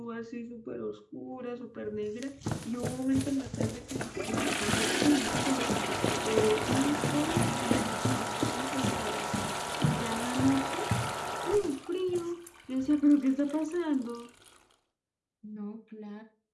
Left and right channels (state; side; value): identical; both; correlation 1.00